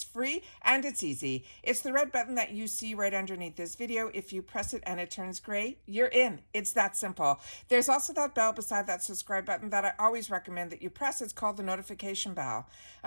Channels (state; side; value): inverted; both; correlation -1.00